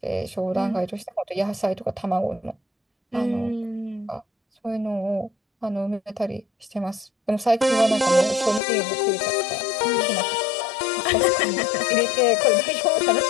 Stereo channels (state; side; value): drops out; right; at 8.6 s